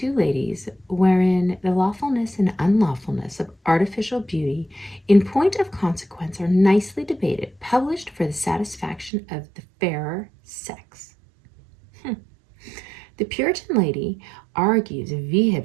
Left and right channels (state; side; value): drops out; left; at 9.1 s